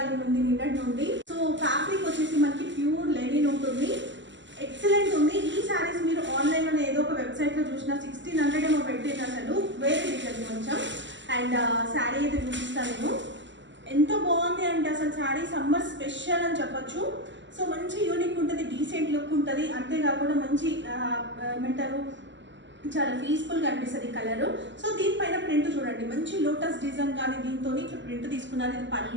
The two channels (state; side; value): late; left; 0.54 ms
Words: ఉంది నిన్నటి నుండి. సో ఫ్యాబ్రిక్ వచ్చేసి మనకి ప్యూర్ లెనిన్ ఉంటుంది, ఎక్సలెంట్ ఉంది. ఈ శారీస్ మీరు ఆన్లైన్లో ఏదో ఒక వెబ్సైట్లో చూసిన 1600 ఏమో పెట్టేది, అసలు వేరే రీజన్ కొంచెం. అండ్ శారీ అయితే చూపిస్తాను నేను. ఎంత బాగుంది అంటే అసలు శారీ సమ్మర్ స్పెషల్ అని చెప్పొచ్చు. సో మంచి యూనిక్ ఉంటుంది, డీసెంట్ లుక్ ఉంటుంది, అంతేకాకుండా మంచి ఏమంటారు చాలా పీస్ఫుల్గా అనిపిస్తుంది కలరు. సో దీనిపైన ప్రింట్ చూడండి, మంచి లోటస్ డిజైన్ కానీ దీంతో ఇట్లా ప్రింట్ తీసుకున్నారు. ఇది